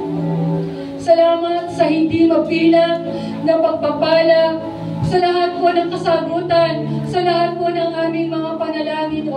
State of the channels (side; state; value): both; identical; correlation 1.00